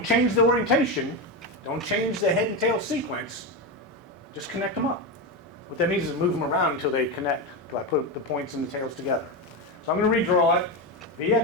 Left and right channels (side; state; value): both; normal; correlation 0.14